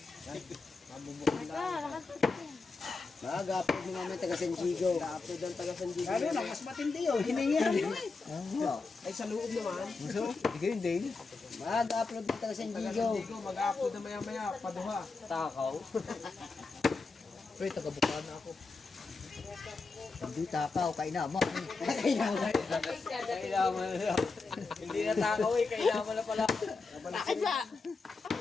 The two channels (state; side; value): quieter; right; 4.1 dB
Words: Mag-upload mo naman taga San Diego. Upload ang taga San Diego. Lalo na, mas matindi yun. Hiningi mo eh. Ano? Ay, sa loob naman. So, hindi kayo din. Mag-upload ng taga San Diego. Mag-upload na maya-maya, paduha. Takaw. Pre, taga-bukaan na ako. Hindi takaw, kainama. Kailangan. Hindi na takaw eh. Kailangan na pala. Bakit ba?